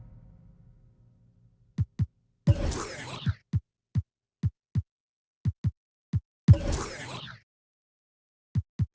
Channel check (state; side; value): identical; both; correlation 1.00